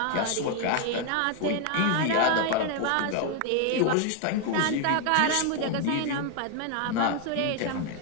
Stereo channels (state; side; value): different; both; correlation 0.01